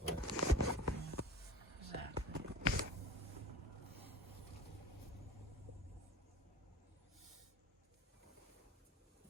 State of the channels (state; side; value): normal; both; correlation 0.37